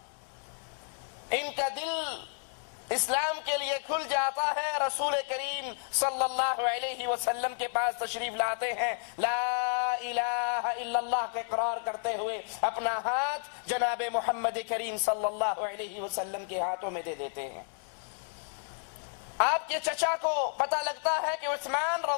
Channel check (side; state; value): right; silent; digital silence